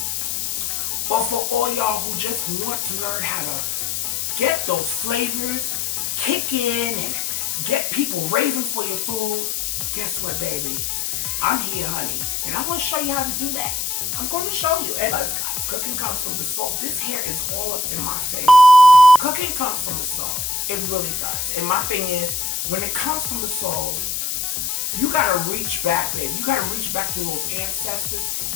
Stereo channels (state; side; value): noise; left; hiss, 1 dB below the sound